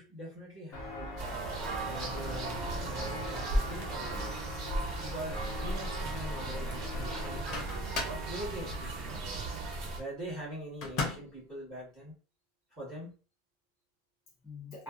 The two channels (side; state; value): both; normal; correlation 0.47